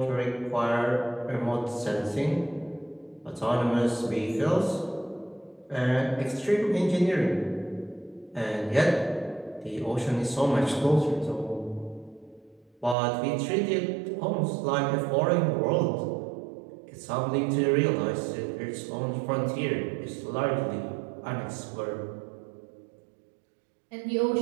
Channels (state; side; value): drops out; left; at 13.0 s